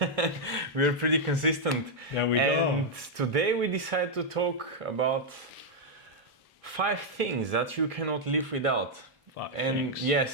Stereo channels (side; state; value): both; normal; correlation -0.02